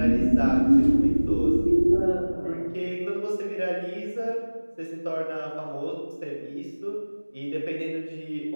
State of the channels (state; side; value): inverted; both; correlation -1.00